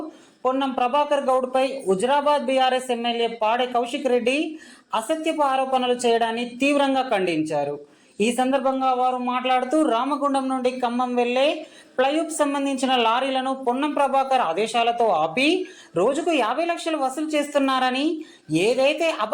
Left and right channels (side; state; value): both; identical; correlation 1.00